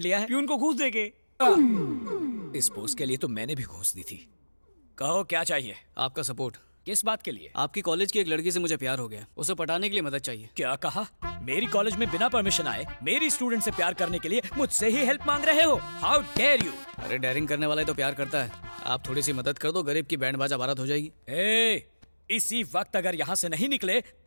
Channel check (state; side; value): inverted; both; correlation -1.00